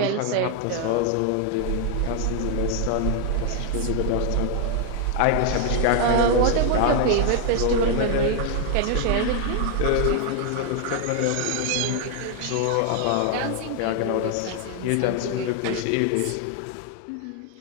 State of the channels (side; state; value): both; different; correlation 0.00